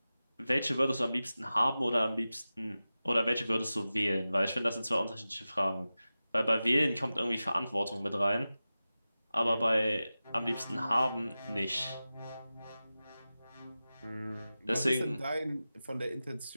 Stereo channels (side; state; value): both; inverted; correlation -0.95